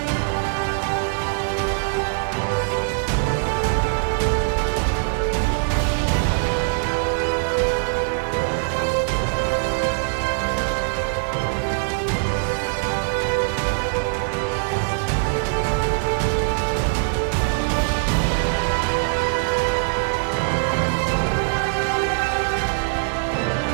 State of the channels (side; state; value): left; silent; 62 dB below the other